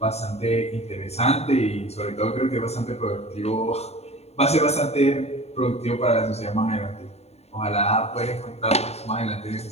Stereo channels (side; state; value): right; late; 0.31 ms